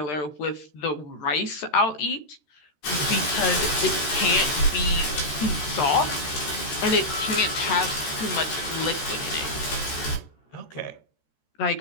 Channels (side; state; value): right; late; 13 ms